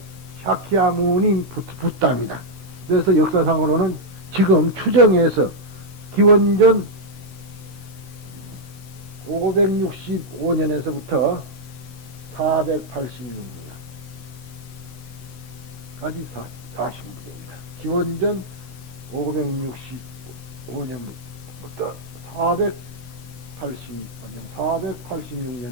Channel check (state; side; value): late; left; 16 ms